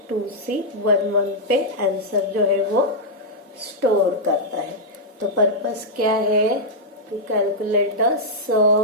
2C11 पे आंसर जो है वो स्टोर करता है। तो पर्पस क्या है, to calculate the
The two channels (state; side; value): normal; both; correlation -0.06